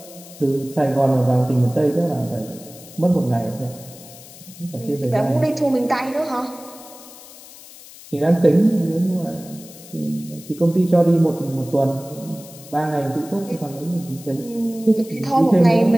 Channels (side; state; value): left; noise; hiss, 19 dB below the sound